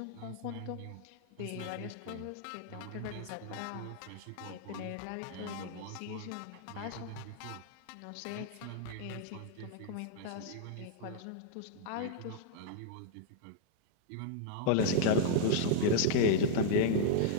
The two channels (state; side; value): different; both; correlation -0.01